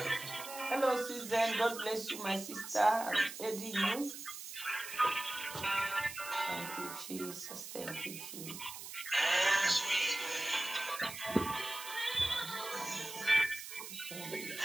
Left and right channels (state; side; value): noise; right; hiss, 10 dB below the sound